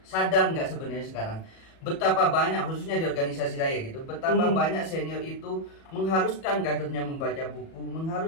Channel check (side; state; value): right; late; 37 ms